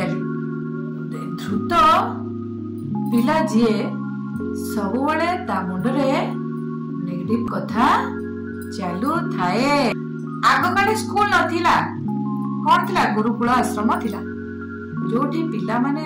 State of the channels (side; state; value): both; identical; correlation 1.00